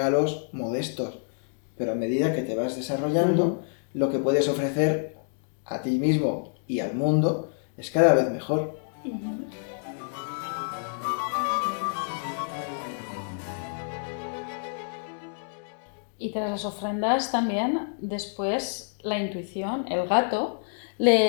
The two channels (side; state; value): right; silent; digital silence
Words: modestos, pero a medida que te vas desarrollando, lo que puedes ofrecer a ti mismo y al mundo es cada vez mejor. Y tras las ofrendas también, después la intuición, el gato,